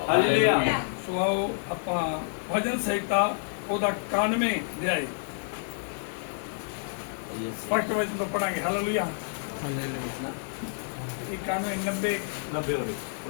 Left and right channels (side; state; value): right; silent; digital silence